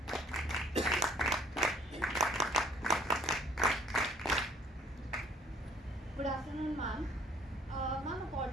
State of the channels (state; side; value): normal; both; correlation 0.58